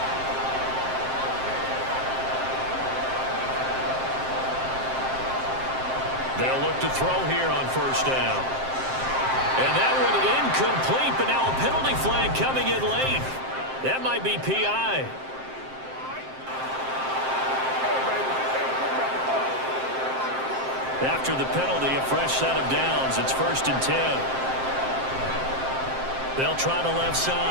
They'll look to throw here on first down. And that one incomplete, but now a penalty flag coming in late. That might be PI. After the penalty, a fresh set of downs. It's 1st and 10. They'll try the left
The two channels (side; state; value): left; late; 7.6 ms